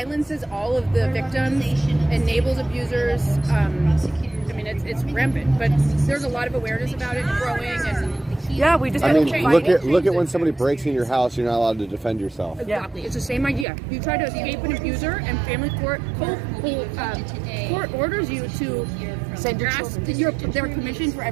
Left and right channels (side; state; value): left; drops out; at 13.7 s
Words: all of the victims, enables abusers. I mean, it's rampant, but there's a lot of awareness about it growing. And we just. I mean, look at when somebody breaks in your house, you're not allowed to defend yourself. Exactly, it's the same idea. You try to escape an abuser, and family court orders you to send your ask children. their permission for